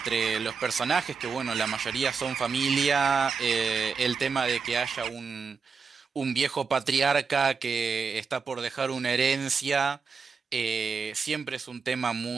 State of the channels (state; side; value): quieter; left; 5.3 dB